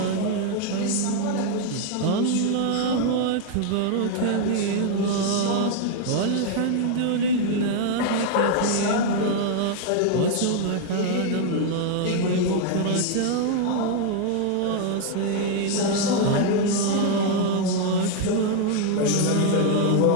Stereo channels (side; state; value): both; different; correlation 0.00